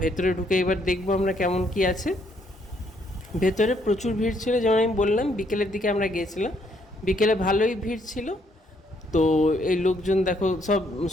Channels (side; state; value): both; normal; correlation 0.70